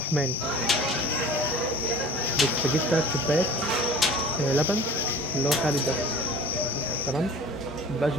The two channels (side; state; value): both; normal; correlation 0.43